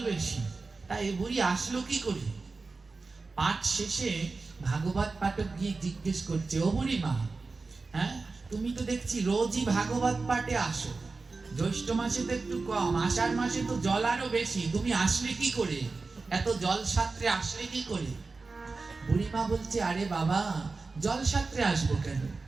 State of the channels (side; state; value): left; quieter; 3.9 dB